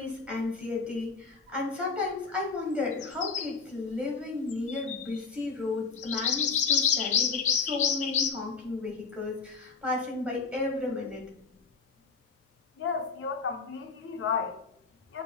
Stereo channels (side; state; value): right; quieter; 4.9 dB